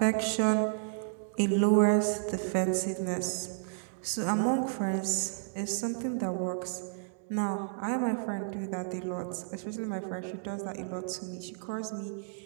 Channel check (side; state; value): left; silent; digital silence